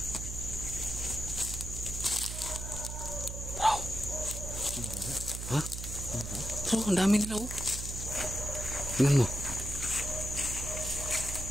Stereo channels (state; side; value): noise; right; hum, 6 dB below the sound